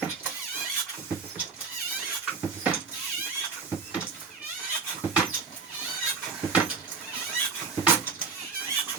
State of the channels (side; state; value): left; quieter; 5.1 dB